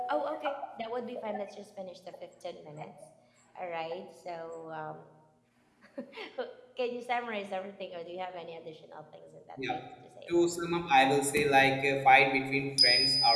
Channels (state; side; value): identical; both; correlation 1.00